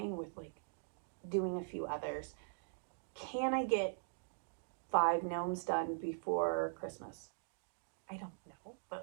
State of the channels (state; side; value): silent; left; digital silence